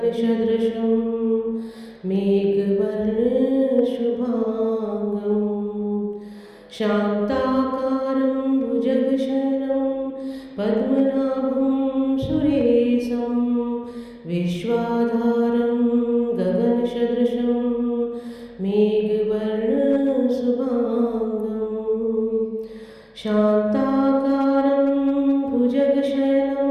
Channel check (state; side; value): identical; both; correlation 1.00